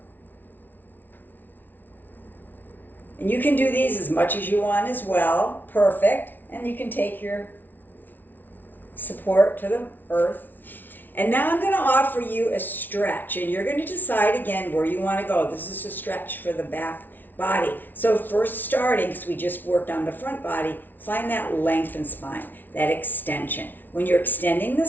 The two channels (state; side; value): late; right; 0.088 ms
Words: And you can do these as much as you want as well. Perfect. And you can take your support to the earth. And now I'm going to offer you a stretch. And you're going to decide again where you want to go. This is a stretch for the back body. So first starting, because we just worked on the front body, find that lengthened spine, that extension. When you're extending the